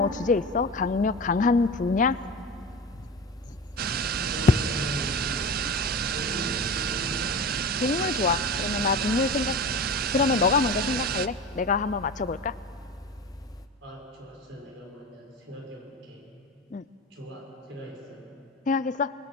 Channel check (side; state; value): both; normal; correlation 0.30